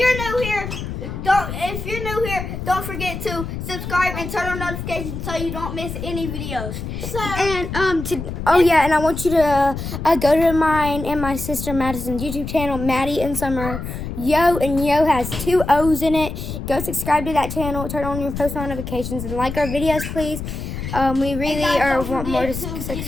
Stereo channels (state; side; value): noise; left; rumble, 7 dB below the sound